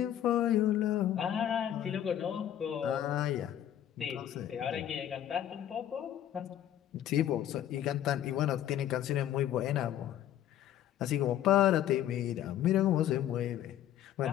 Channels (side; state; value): right; quieter; 11.3 dB